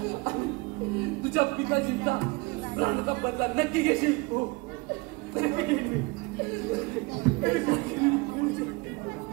तुझ्या पिताजींचा प्राणाचा बदला नक्की घेशील. हो नक्की घेईल.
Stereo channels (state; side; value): quieter; left; 25.8 dB